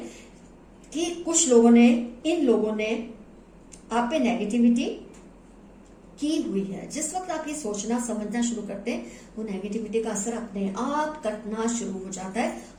कि कुछ लोगों ने, इन लोगों ने आप पे नेगेटिविटी की हुई है, जिस वक्त आप ये सोचना समझना शुरू करते हैं, वो नेगेटिविटी का असर अपने आप कटना शुरू हो जाता है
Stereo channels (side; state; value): both; identical; correlation 1.00